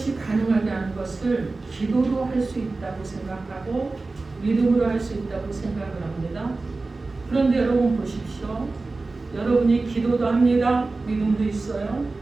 가능하게 하는 것을 기도로 할 수 있다고 생각하고 믿음으로 할 수 있다고 생각을 합니다. 그런데 여러분 보십시오. 여러분이 기도도 합니다. 믿음도 있어요.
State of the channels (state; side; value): quieter; left; 3.5 dB